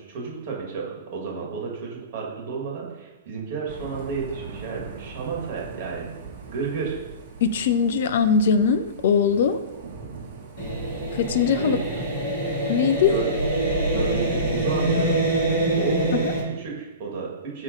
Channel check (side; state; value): both; inverted; correlation -0.33